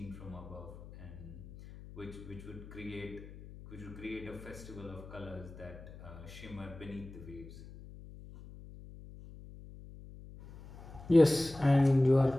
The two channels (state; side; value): noise; left; hum, 16 dB below the sound